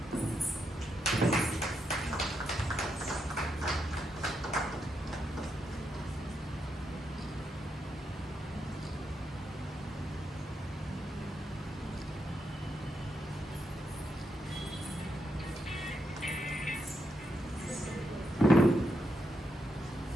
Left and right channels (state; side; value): normal; both; correlation 0.82